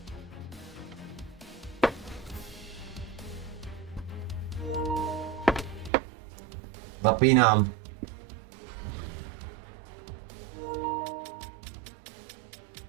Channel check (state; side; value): drops out; left; at 5.9 s